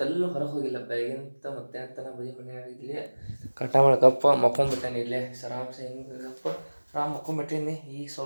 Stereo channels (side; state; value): both; inverted; correlation -1.00